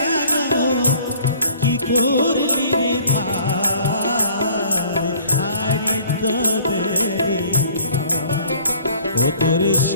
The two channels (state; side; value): inverted; both; correlation -0.53